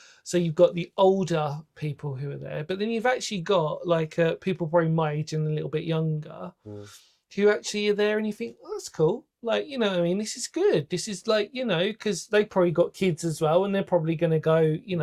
So you've got the older people who are there, but then you've actually got like people probably my age and a little bit younger who actually are there, and you think, oh, that's cool. Like, you know what I mean? This is good. This is like, you know, because they probably got kids as well, and they're probably going to go, you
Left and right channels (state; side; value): identical; both; correlation 1.00